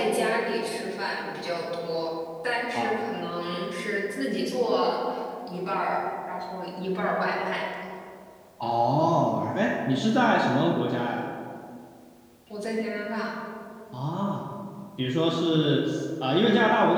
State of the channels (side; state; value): both; identical; correlation 1.00